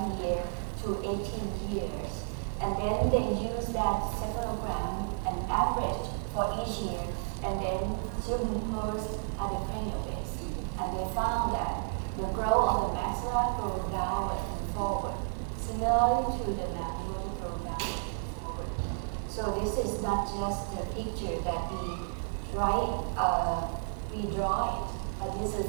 year to 18 years. And then they use that severogram and average for each year, and then superimpose at the cranial base. And they found that the growth of the maxilla goes downward and forward, similarly to the mandible grow downward and forward. So this is not just the picture that we draw it, but this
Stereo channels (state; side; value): silent; left; 56 dB below the other